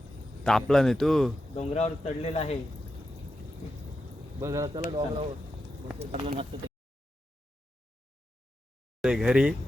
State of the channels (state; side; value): normal; both; correlation 0.88